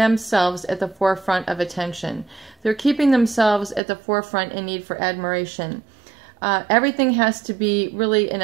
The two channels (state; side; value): drops out; left; at 3.8 s